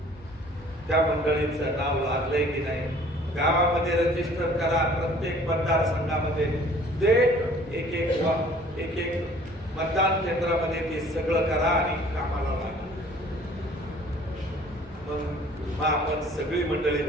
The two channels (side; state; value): both; normal; correlation 0.53